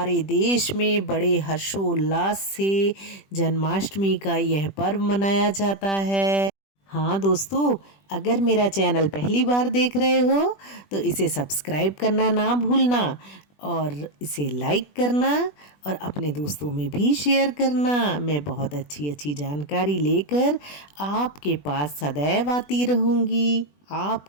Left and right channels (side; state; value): right; late; 20 ms